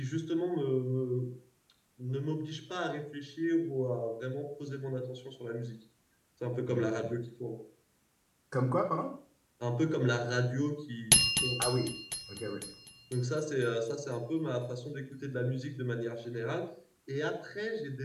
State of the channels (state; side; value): identical; both; correlation 1.00